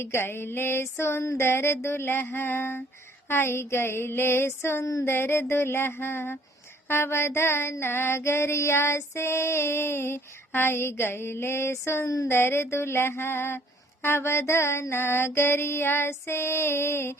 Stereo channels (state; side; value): normal; both; correlation 0.60